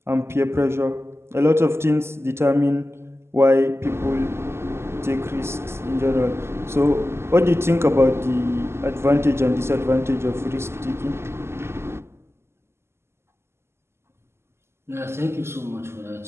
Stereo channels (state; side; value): late; left; 0.12 ms